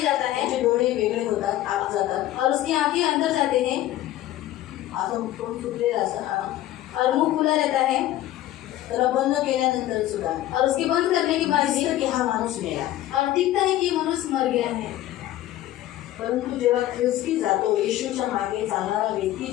जाता है त्याचे डोळे वेगळे होतात, आत जातात और उसकी आंखें अंदर जाते हैं असं तोंड सुटलेलं असं और मुंह खुला रहता है त्याला बंद केल्यानंतर सुद्धा और उसके बंद करने के बाद भी दिसतं की हा माणूस मेला. और दिखता है कि मनुष्य मर गया है. परंतु जेव्हा ख्रिस्ती जातो, येशूच्या मागे चालणारा व्यक्ती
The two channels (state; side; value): quieter; right; 14.2 dB